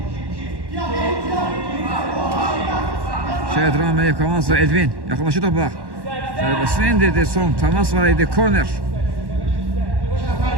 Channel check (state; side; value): late; left; 1.1 ms